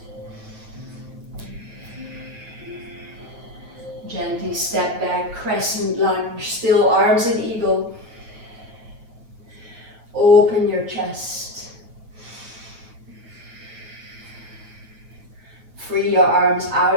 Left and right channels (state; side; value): late; left; 8.1 ms